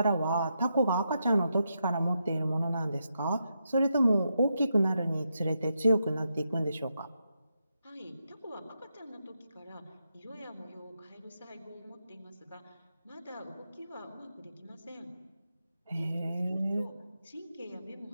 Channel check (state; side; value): inverted; both; correlation -0.84